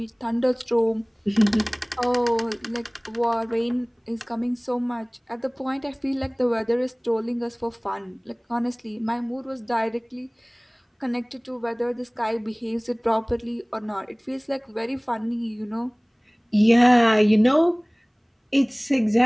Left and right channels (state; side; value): identical; both; correlation 1.00